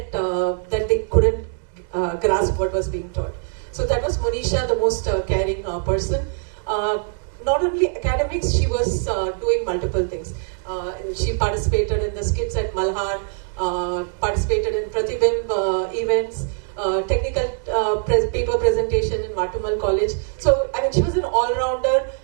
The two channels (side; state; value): left; silent; 55 dB below the other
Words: that they couldn't grasp what was being taught. So that was Monisha, the most caring person. Not only academics, she was doing multiple things. She participated in the skits at Malhar, participated in Pratibimb events, technical paper presentation in Matumal College. So, I mean, she was an all-rounder